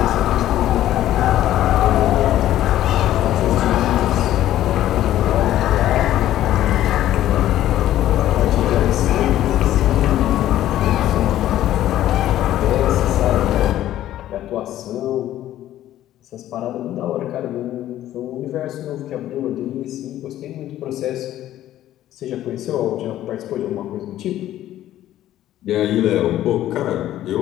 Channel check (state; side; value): quieter; right; 13.1 dB